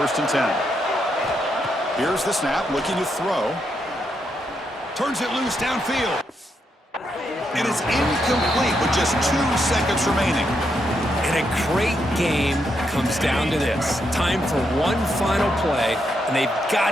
and 10. Here's the snap, looking to throw. Turns it loose downfield. It is incomplete with just 2 seconds remaining. And a great game comes down to this. Time for one final play, and they've got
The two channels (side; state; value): both; normal; correlation 0.80